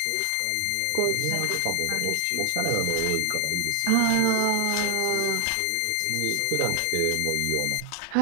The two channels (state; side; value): different; both; correlation 0.00